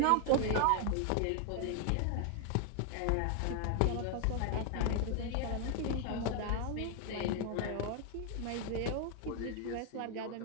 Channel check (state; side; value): different; both; correlation 0.00